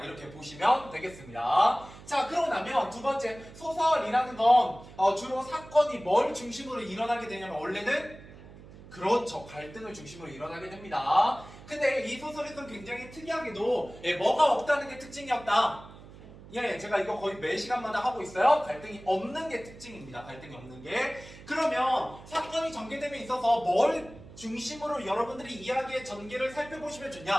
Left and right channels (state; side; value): noise; right; hum, 18 dB below the sound